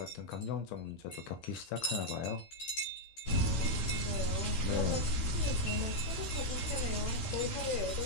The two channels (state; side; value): late; right; 15 ms